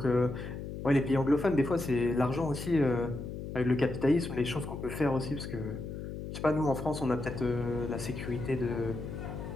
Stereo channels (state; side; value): noise; left; hum, 8 dB below the sound